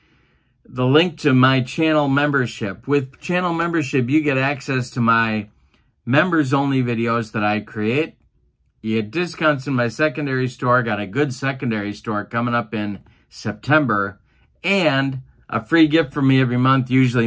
the link to my channel membership. With channel membership, you get access to my members-only videos that I create. You get discounts in my secondary store. Got a good secondary store coming up in September. And a free gift from me every month, usually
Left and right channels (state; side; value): identical; both; correlation 1.00